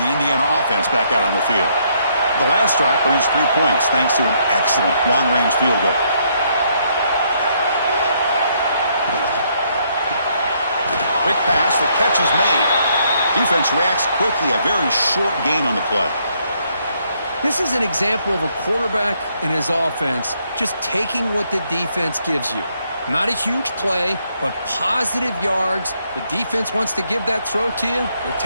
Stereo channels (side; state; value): both; inverted; correlation -0.72